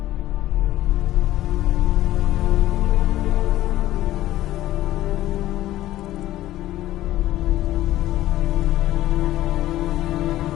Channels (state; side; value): quieter; right; 14.7 dB